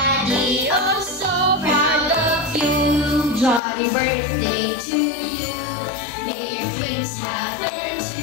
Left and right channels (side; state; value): right; drops out; at 3.6 s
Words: oh so proud of you. Johnny birthday to you, may your dreams happen